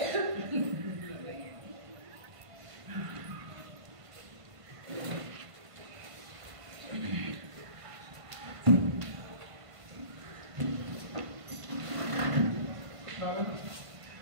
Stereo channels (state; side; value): late; left; 1.5 ms